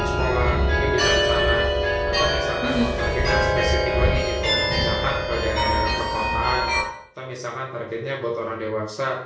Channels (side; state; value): both; identical; correlation 1.00